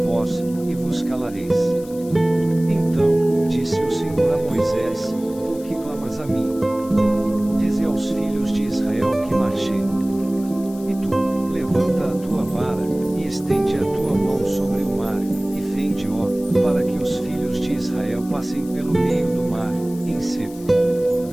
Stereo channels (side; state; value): left; noise; hiss, 21 dB below the sound